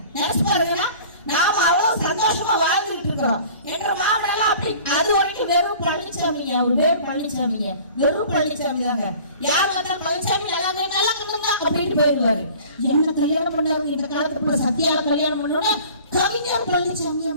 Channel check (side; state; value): both; inverted; correlation -0.46